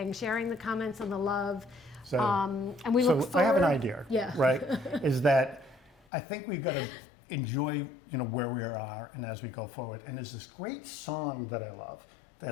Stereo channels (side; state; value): right; drops out; at 6.0 s